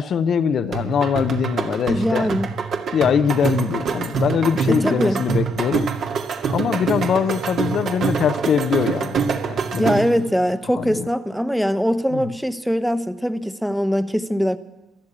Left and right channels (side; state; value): both; normal; correlation 0.78